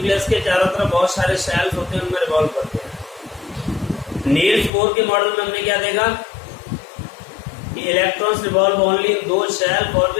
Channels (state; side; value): drops out; right; at 4.7 s